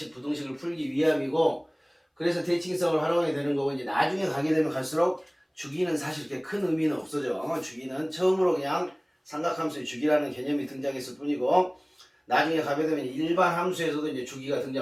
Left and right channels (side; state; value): both; identical; correlation 1.00